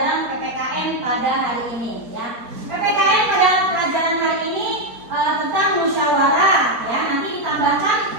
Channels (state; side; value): late; left; 4.4 ms